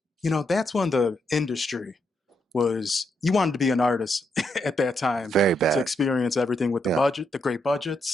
that's when the industry was, you wanted to be an artist at that time Very to bad. experience everything with the Yeah, budget, the great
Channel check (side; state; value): both; normal; correlation 0.79